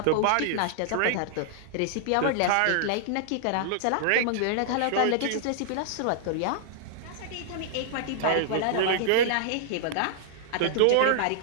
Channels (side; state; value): both; different; correlation -0.01